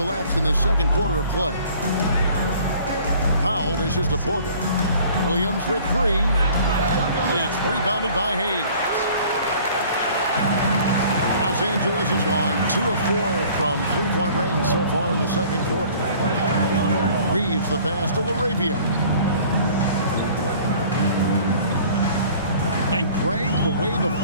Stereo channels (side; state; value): both; inverted; correlation -0.51